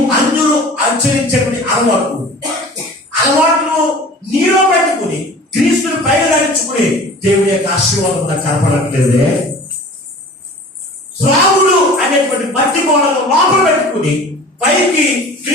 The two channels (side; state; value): both; normal; correlation 0.42